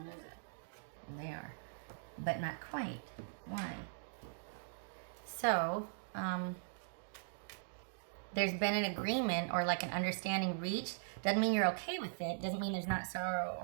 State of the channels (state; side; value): silent; left; digital silence